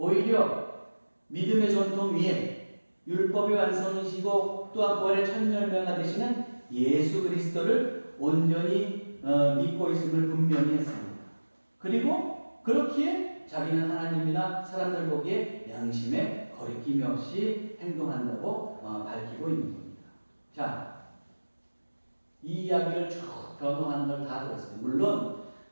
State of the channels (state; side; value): inverted; both; correlation -1.00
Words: 믿음의 전통 위에 율법의 완성이시고 또한 부활의 첫 열매가 되시는 예수 그리스도를 온전히 믿고 있음을 분명히 했습니다. 그리고 그렇기에 자기는 하나님이나 사람들 보기에 양심에 거리낌이 없이 행동한다고 밝히고 있는 겁니다. 자, 이 이야기를 쭉 변호하는 걸 다 들었어요. 물론